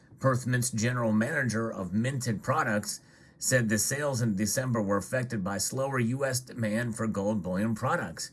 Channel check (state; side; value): identical; both; correlation 1.00